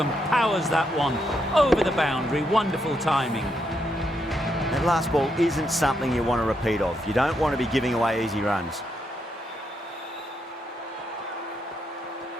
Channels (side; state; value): both; normal; correlation 0.79